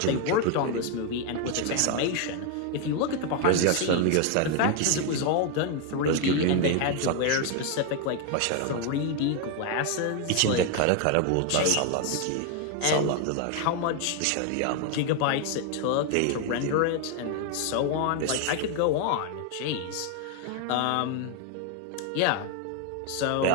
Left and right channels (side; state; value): both; different; correlation 0.01